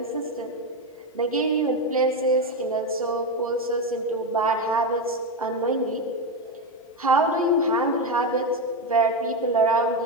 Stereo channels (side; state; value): both; normal; correlation 0.12